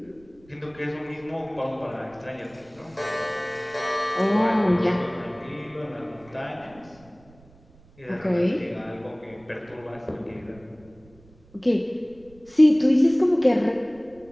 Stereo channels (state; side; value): noise; right; rumble, 27 dB below the sound